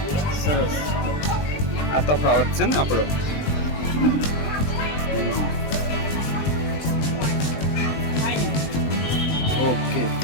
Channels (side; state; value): right; late; 20 ms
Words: સરસ આ તફાવત છે ને આપણો ઓકે